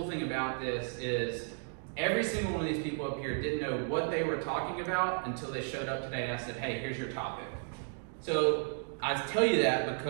thing about this is every single one of these people up here didn't know what they were talking about until they showed up today and I said, hey, here's your topic. So I tell you that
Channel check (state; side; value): silent; left; 55 dB below the other